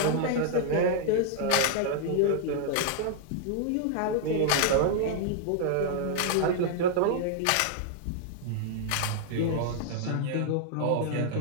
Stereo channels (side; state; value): both; different; correlation -0.01